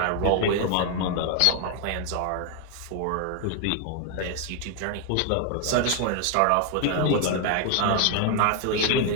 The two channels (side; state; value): both; different; correlation 0.00